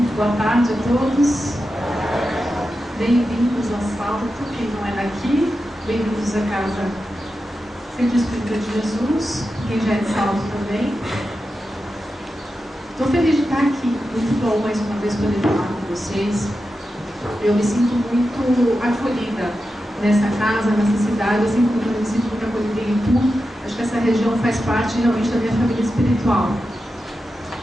Boa tarde a todos. Bem-vindos ao Salto, quem não é daqui. Bem-vindos à casa Centro Espírita de Jesus, quem já é de Salto também. Estou feliz de estar aqui, muito bom mais uma vez poder falar com vocês. Eu me sinto muito acolhida nessa casa, nessa cidade, assim como eu me sinto muito acolhida em Itu. Acho que essa região faz parte realmente da minha família espiritual.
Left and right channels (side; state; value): both; normal; correlation 0.90